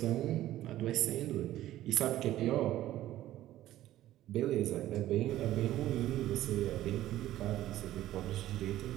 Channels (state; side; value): quieter; left; 14.1 dB